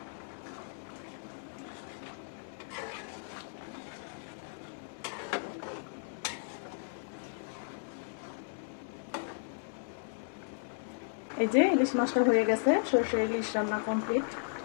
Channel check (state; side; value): silent; right; digital silence